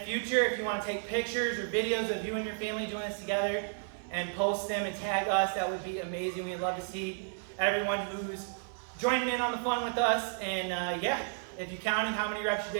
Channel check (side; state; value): left; silent; 56 dB below the other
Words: future. If you want to take pictures or videos of you and your family doing this together and post them and tag us, that would be amazing. We'd love to see everyone who's joining in on the fun with us. And yeah, if you counted how many reps you